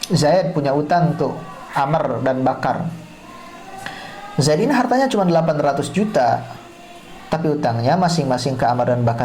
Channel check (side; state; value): both; identical; correlation 1.00